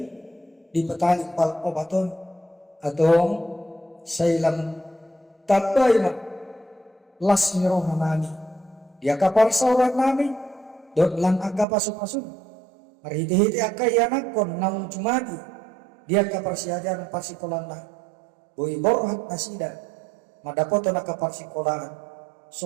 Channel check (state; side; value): drops out; left; at 11.7 s